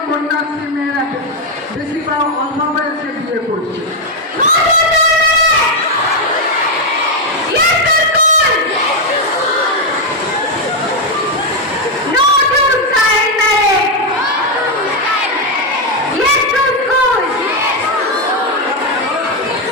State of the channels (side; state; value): both; normal; correlation 0.04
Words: কন্যাশ্রী মেয়েরা বেশিরভাগ অল্প বয়সে বিয়ে করছে।